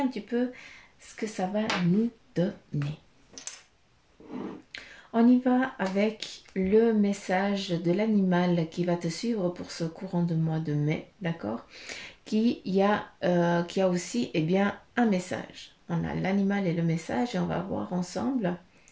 petit peu ce que ça va nous donner. On y va avec le message de l'animal qui va te suivre pour ce courant de mois de mai, d'accord, qui a aussi un message. On a l'animal et le message et on va voir ensemble.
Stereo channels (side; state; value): both; identical; correlation 1.00